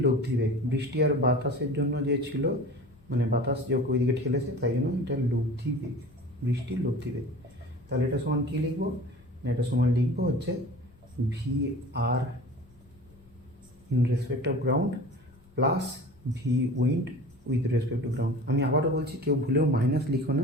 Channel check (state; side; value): noise; left; rumble, 28 dB below the sound